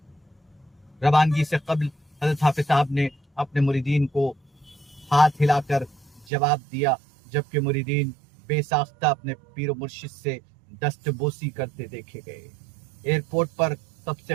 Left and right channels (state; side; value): drops out; left; at 6.2 s